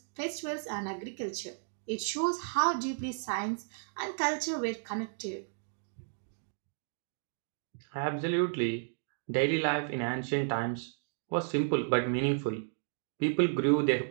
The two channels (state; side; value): silent; left; digital silence